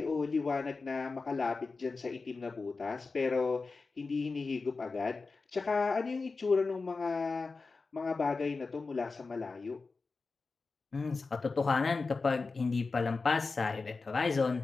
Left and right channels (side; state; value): right; quieter; 4.1 dB